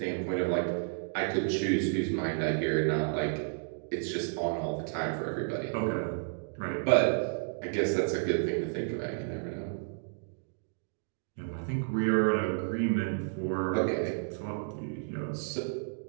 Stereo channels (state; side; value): silent; left; digital silence